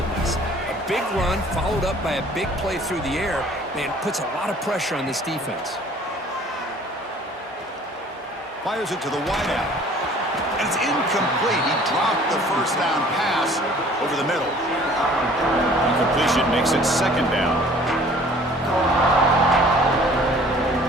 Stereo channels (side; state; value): both; normal; correlation 0.52